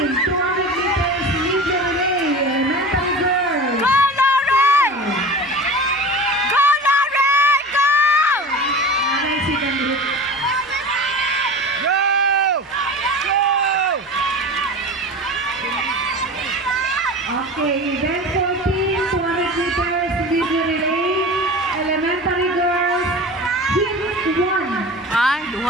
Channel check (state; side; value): normal; both; correlation 0.33